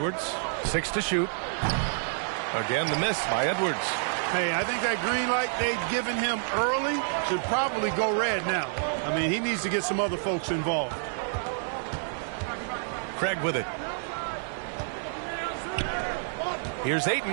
6 to shoot. Again, the miss by Edwards. Hey, I think that green light they'd given him early should probably go red now. I mean, he needs to get some other folks involved. Craig with it. Here's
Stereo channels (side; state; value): left; silent; digital silence